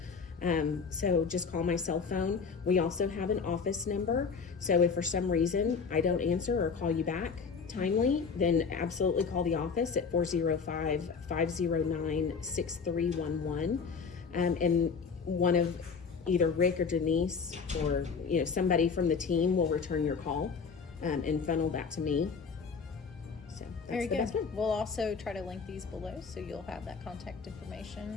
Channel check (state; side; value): quieter; right; 5.5 dB